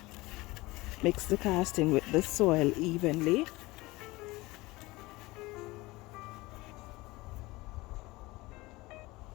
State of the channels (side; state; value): right; quieter; 21.1 dB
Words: Mix the casting with the soil evenly.